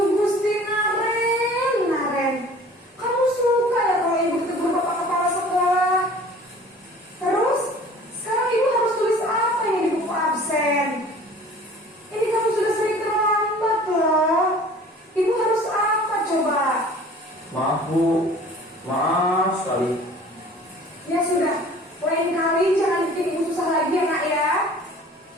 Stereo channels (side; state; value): both; normal; correlation 0.47